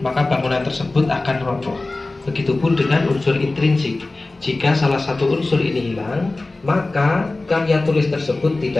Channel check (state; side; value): quieter; right; 3.1 dB